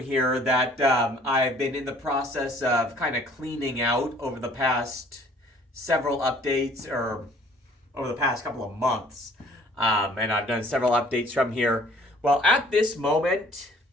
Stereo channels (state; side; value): normal; both; correlation 0.56